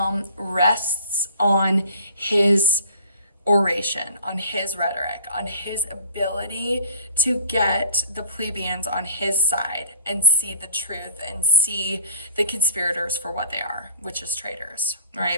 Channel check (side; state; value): both; inverted; correlation -0.52